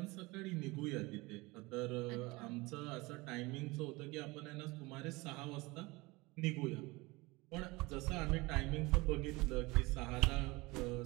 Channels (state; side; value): quieter; left; 23.1 dB